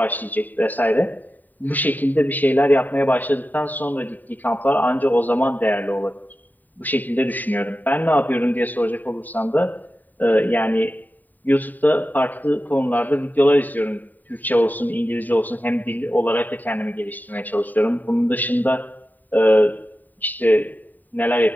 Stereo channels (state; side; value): late; right; 0.086 ms